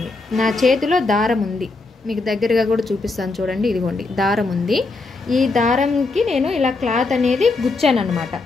నా చేతిలో దారం ఉంది, మీకు దగ్గరగా కూడా చూపిస్తాను చూడండి. ఇదిగోండి దారం ఉంది. ఈ దారంకి నేను ఇలా క్లాత్ అనేది గుచ్చాను అనమాట.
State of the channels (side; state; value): right; quieter; 3.6 dB